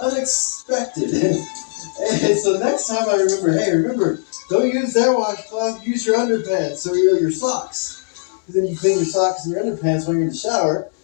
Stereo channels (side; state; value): right; silent; digital silence